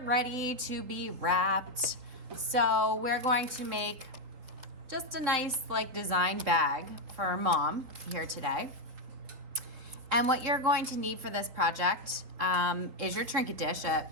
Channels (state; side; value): late; left; 3.8 ms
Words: to be wrapped. So we're going to make just a nice design bag for Mom here today. And what you're going to need for this project is your trinket dish